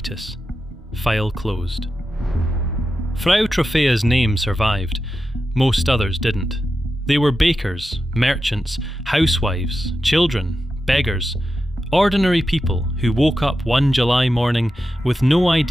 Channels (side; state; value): both; normal; correlation 0.90